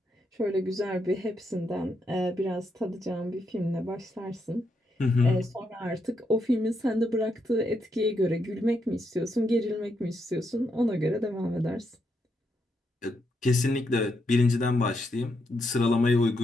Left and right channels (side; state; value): both; normal; correlation 0.80